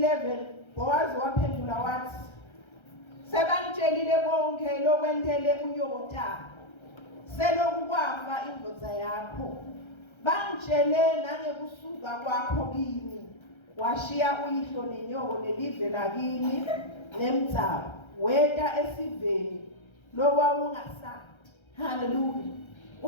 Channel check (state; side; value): late; right; 1.3 ms